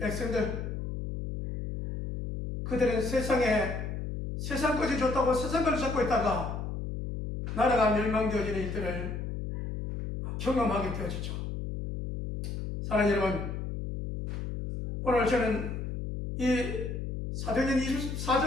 그들은 세상 것이 좋다고 세상 것을 찾고 있다가 나라가 멸망되어지는 일들을 경험하게 되어지죠. 사랑하는 여러분, 오늘 저는 이 사도행전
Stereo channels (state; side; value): noise; left; hum, 5 dB below the sound